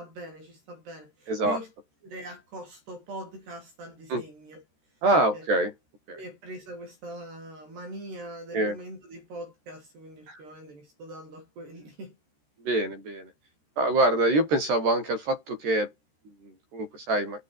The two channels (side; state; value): left; late; 13 ms